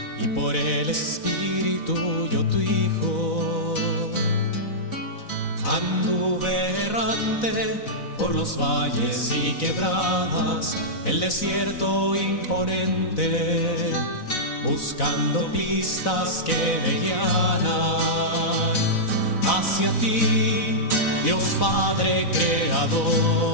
y por el Espíritu yo tu Hijo. Anduve errante por los valles y quebradas, el desierto imponente, buscando pistas que me guiaran hacia ti, Dios Padre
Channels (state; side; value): late; right; 4.0 ms